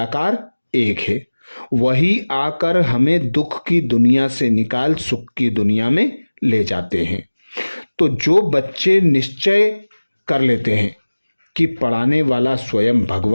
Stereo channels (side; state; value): both; inverted; correlation -1.00